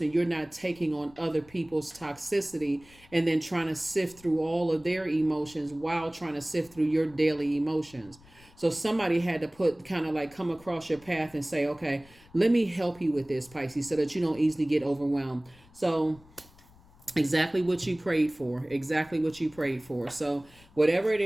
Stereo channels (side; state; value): left; noise; rumble, 26 dB below the sound